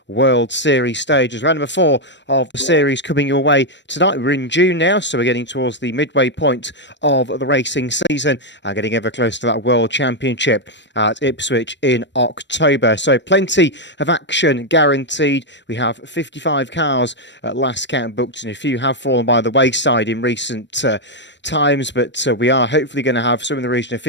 World Series stages. Round number 4 of the series coming your way tonight. We're in June now, so we're getting towards the midway point of the racing season and getting ever close to that World Championship at Ipswich in October. So plenty of action guaranteed. We have 55 cars at last count booked, and a few have fallen by the wayside in recent times, but we are hopefully going to have some in the region of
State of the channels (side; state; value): right; late; 0.52 ms